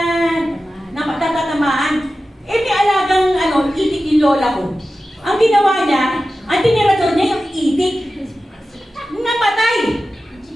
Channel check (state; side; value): normal; both; correlation 0.94